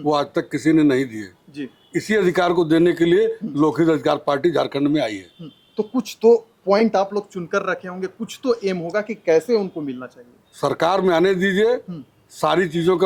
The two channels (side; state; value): both; identical; correlation 1.00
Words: आज तक किसी ने नहीं दिए। जी इसी अधिकार को देने के लिए लोकहित अधिकार पार्टी झारखंड में आई है। तो कुछ तो पॉइंट आप लोग चुनकर रखे होंगे, कुछ तो एम होगा कि कैसे उनको मिलना चाहिए। सरकार में आने दीजिए, सारी चीजों